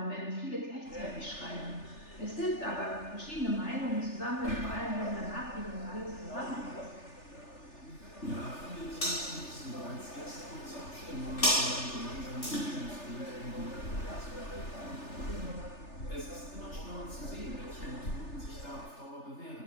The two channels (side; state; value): right; late; 3.4 ms